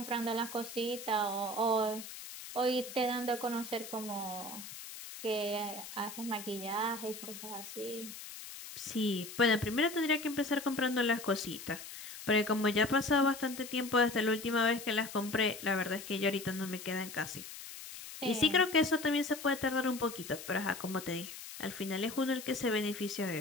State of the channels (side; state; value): left; noise; hiss, 12 dB below the sound